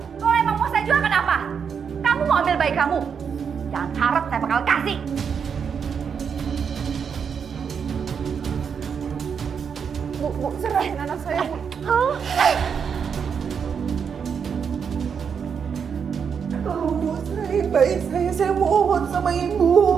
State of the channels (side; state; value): left; quieter; 6.8 dB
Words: emang mau saya jual kenapa? Kamu mau ambil bayi kamu? Jangan harap saya bakal kasih. Bu, serahin anak saya, Bu. Tolong, Bu, serahin bayi saya mohon sama